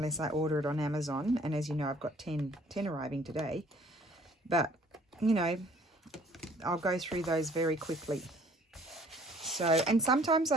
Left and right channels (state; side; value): normal; both; correlation 0.57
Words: I order it on Amazon. And as you know, I've got 10 arriving today. But, you know, I'll go through those very quickly. So, and sometimes